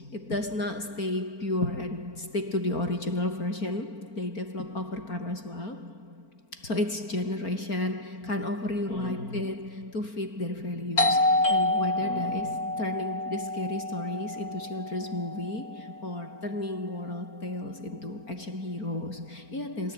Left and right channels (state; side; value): late; right; 4.4 ms